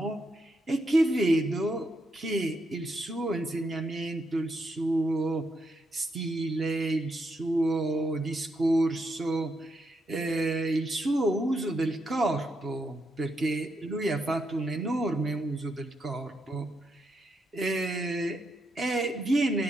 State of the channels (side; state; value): both; normal; correlation 0.81